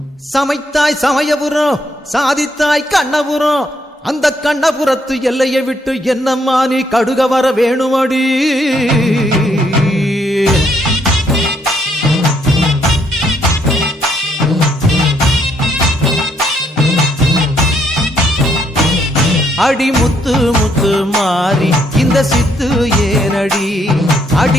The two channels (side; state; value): both; normal; correlation 0.72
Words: சமைத்தாய் சமயபுரம் சாதித்தாய் கண்ணபுரம் அந்த கண்ணபுரத்து எல்லையை விட்டு என்னம்மா நீ கடுக வர வேணுமடி அடி முத்து முத்து மாறி இந்த சித்து ஏனடி